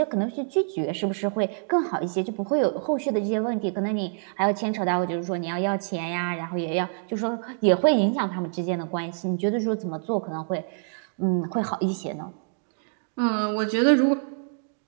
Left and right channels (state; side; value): silent; left; digital silence